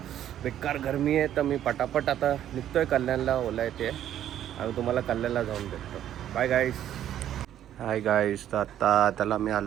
बेकार गरमी आहे, तर मी पटापट आता निघतोय कल्याणला. ओला येते आणि तुम्हाला कल्याणला जाऊन भेटतो. Bye guys. Hi guys. तर आता त्याला मी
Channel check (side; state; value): left; quieter; 11.2 dB